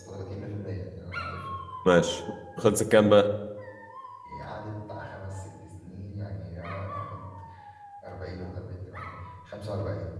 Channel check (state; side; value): identical; both; correlation 1.00